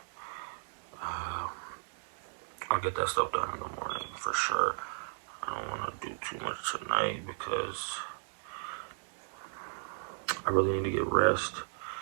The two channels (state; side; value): silent; left; digital silence